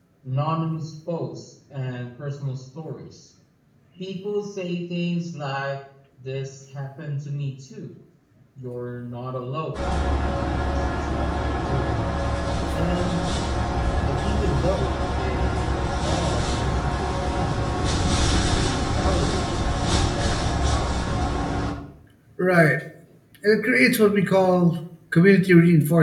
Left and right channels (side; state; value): both; identical; correlation 1.00